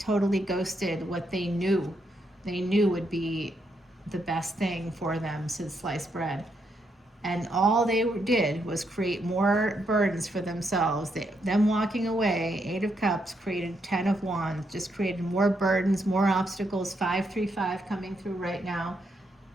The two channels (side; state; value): both; normal; correlation 0.78